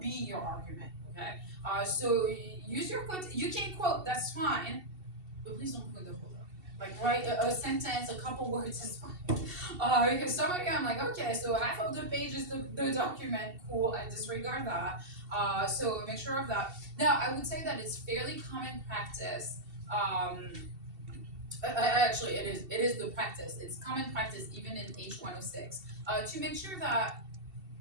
your argument, okay? So use your quote, you can quote, that's fine, but please don't quote the whole document. Like write a sentence, a couple words is fine. Because some of you, I'm like, okay, so half of the page is the document, cool, I disregard that. So make sure of that. Now, I would say that it's fairly common practice. Actually, it is the practice. It's common practice even in H106 to make sure that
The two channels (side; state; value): left; late; 2.7 ms